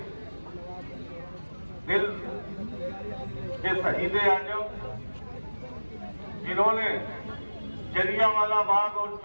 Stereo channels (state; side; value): inverted; both; correlation -1.00